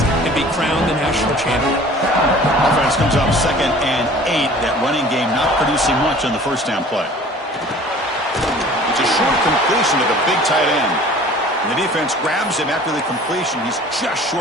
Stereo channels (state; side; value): normal; both; correlation 0.47